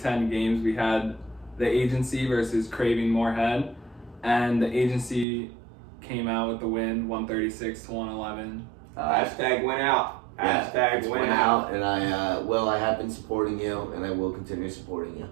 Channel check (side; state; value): left; drops out; at 5.2 s